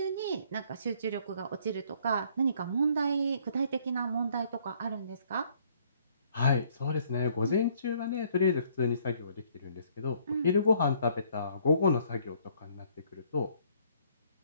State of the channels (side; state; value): both; inverted; correlation -0.63